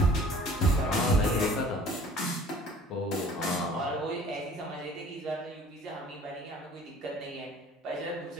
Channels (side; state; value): both; normal; correlation 0.50